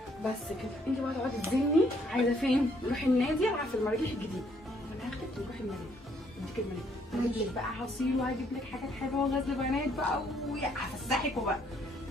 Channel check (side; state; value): both; normal; correlation 0.67